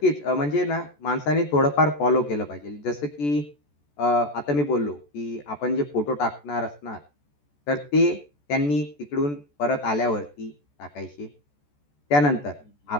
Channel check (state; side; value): late; right; 14 ms